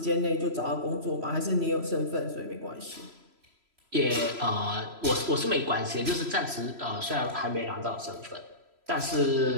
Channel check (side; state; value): left; late; 3.0 ms